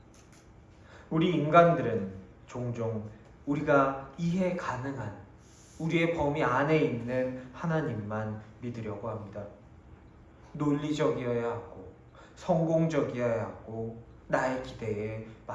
우리 인간들은 종종 우리가 이해 가능한 우리의 범위 안에 있는 하나님만 믿으려고 합니다. 논리적이어야 하고 성공적이어야 하고 나의 기대에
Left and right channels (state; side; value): identical; both; correlation 1.00